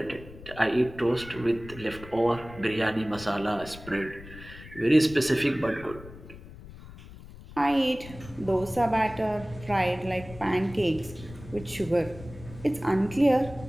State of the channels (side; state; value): left; noise; rumble, 16 dB below the sound